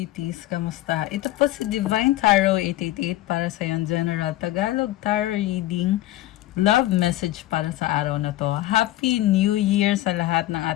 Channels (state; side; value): quieter; right; 15.7 dB